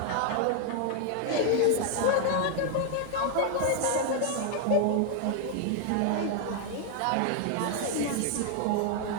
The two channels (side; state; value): both; different; correlation 0.01